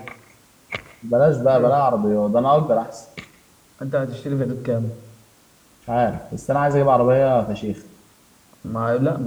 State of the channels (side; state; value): both; identical; correlation 1.00